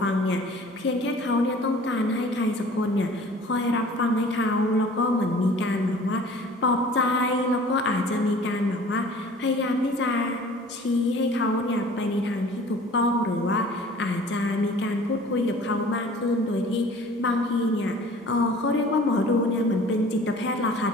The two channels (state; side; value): normal; both; correlation 0.48